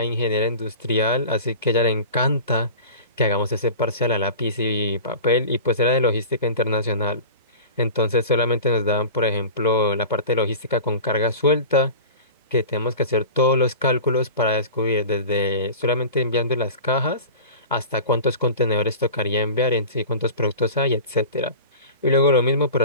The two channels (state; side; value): inverted; both; correlation -0.35